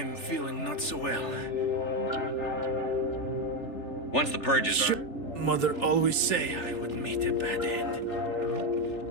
feeling not so well. Once the purge is armed... Mother always say I would meet a bad end.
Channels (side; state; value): right; late; 3.4 ms